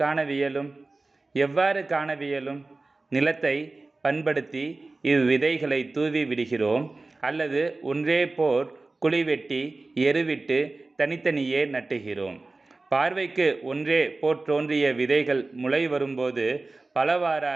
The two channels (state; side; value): quieter; left; 3.4 dB